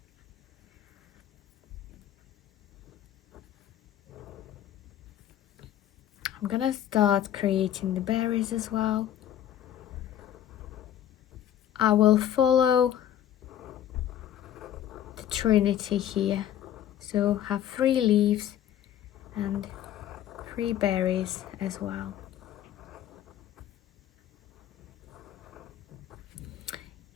I'm gonna start creating the berries as well. I will follow the Trinity here. So have 3 leaves and 3 berries as well.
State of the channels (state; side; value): quieter; right; 11.2 dB